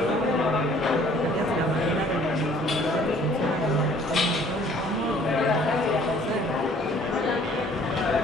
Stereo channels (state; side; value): normal; both; correlation 0.56